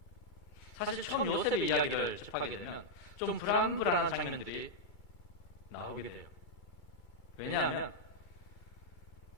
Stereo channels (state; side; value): late; right; 2.3 ms